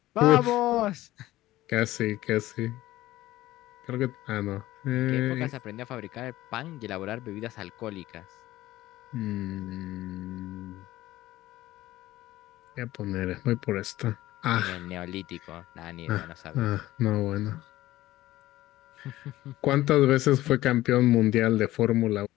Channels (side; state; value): right; quieter; 16.1 dB